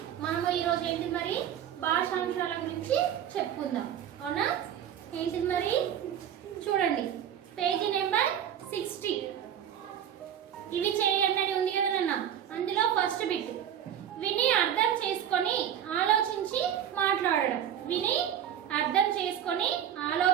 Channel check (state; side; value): quieter; left; 9.7 dB